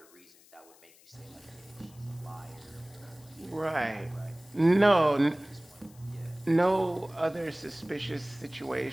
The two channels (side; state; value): left; noise; hiss, 26 dB below the sound